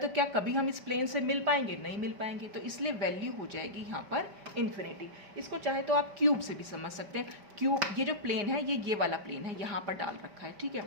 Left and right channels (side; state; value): left; late; 5.1 ms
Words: तो क्या कभी हम इस प्लेन से मिल पाएंगे? नहीं मिल पाएंगे, तो इसलिए वैल्यू हो जाएगी यहाँ पर इन्फिनिटी। इसको चाहे तो आप क्यूब से भी समझ सकते हैं। क्यूब, ये जो प्लेन है ये वाला प्लेन है, यहाँ पर डाल रखा है। ठीक है,